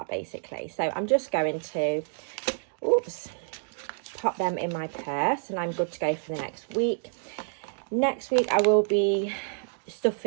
basically. So I'm just going to, pop them in my purse, and I'm good to go for the next week. Next week I will be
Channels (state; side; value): silent; left; digital silence